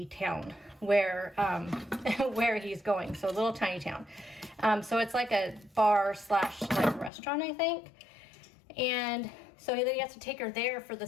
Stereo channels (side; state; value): right; drops out; at 7.1 s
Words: town where, where he's going. So a little tiny town. So it's like a bar / like restaurant, I think. And so then he has to take her there for the